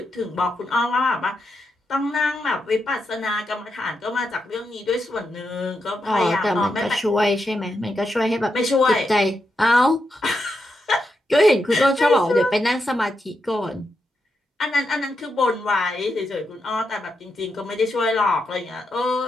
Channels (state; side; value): normal; both; correlation 0.84